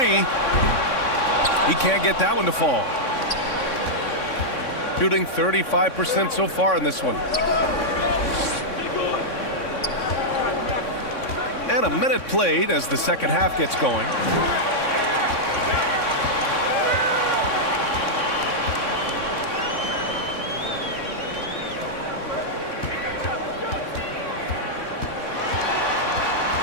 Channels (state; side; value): late; right; 3.6 ms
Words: He can't get that one to fall. Shooting 35% so far in this one. And a minute played as the second half gets going.